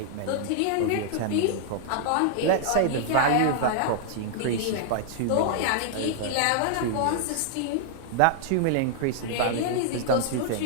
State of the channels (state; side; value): different; both; correlation -0.01